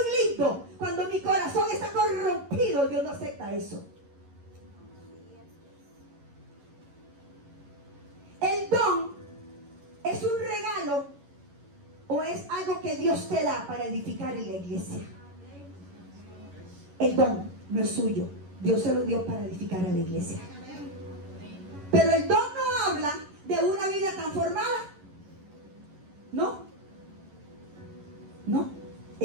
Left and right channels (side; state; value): left; late; 11 ms